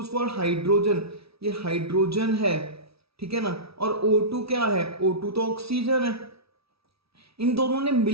for hydrogen, ये हाइड्रोजन है। ठीक है ना। और O2 क्या है? O2 तो ऑक्सीजन है। इन दोनों ने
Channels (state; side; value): late; left; 0.76 ms